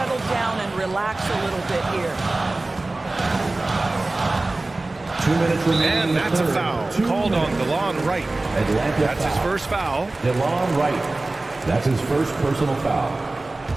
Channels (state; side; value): quieter; left; 3.0 dB